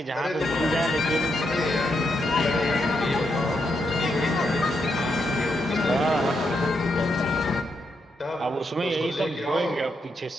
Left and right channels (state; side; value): normal; both; correlation 0.81